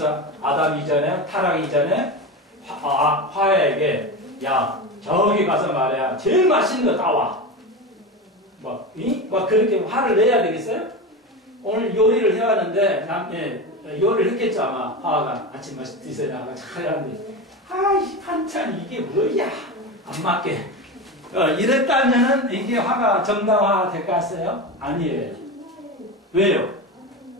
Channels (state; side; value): normal; both; correlation 0.22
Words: 아담 이전에, 타락 이전에 화야에게 야, 저기 가서 말이야. 제일 맛있는 거 따와. 막 그렇게 화를 내야 되겠어요? 오늘 요리를 해왔는데, 요리를 했겠죠, 아마. 화가 아침 맛이 드세요. 나가 잘 하는데, 아이, 반찬 이게 뭐야? 안 맞게. 이랬다면은 이게 화가 정당화 될 것 같아요? 아니에요. 왜요?